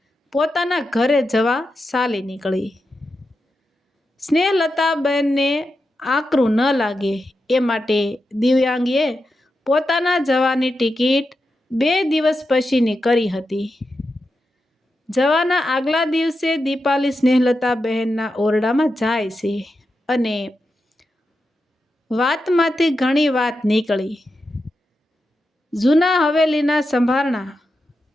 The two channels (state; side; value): normal; both; correlation 0.89